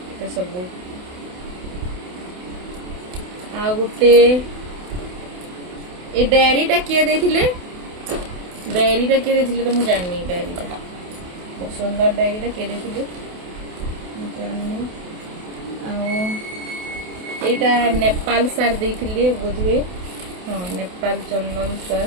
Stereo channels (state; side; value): late; left; 28 ms